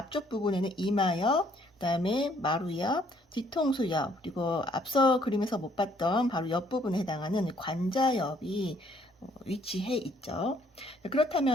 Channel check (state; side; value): normal; both; correlation 0.64